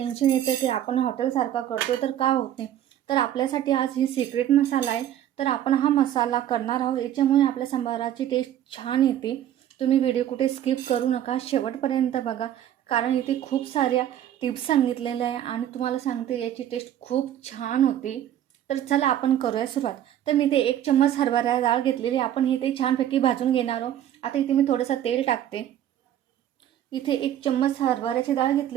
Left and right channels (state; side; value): quieter; left; 11.3 dB